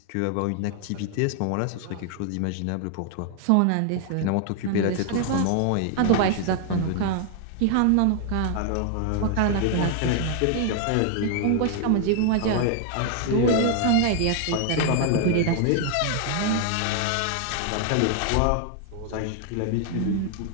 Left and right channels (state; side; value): different; both; correlation 0.00